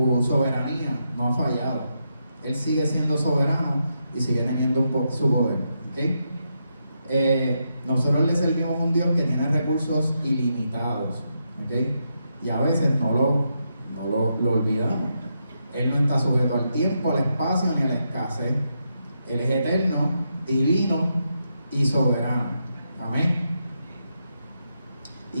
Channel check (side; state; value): both; inverted; correlation -0.83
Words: soberanía no ha fallado. Él sigue siendo soberano y sigue teniendo su poder. ¿Okay? Nosotros le servimos a un Dios que tiene recursos ilimitados, ¿okay? Y a veces no lo olvidamos. Él no está sujeto al tiempo, al espacio ni a la escasez. Él es eterno, divino y soberano. Amén.